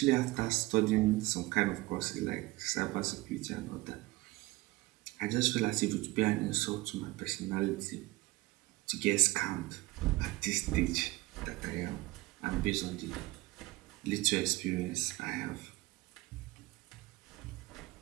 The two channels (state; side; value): quieter; left; 20.7 dB